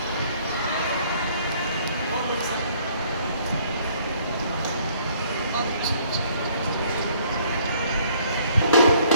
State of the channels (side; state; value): both; inverted; correlation -0.61